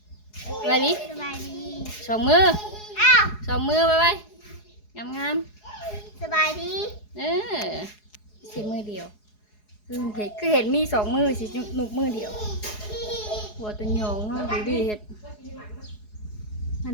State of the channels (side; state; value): right; late; 4.8 ms